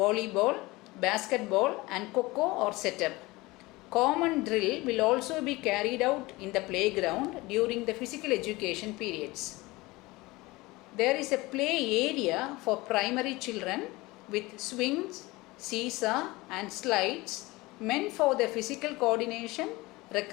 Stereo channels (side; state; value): right; quieter; 21.5 dB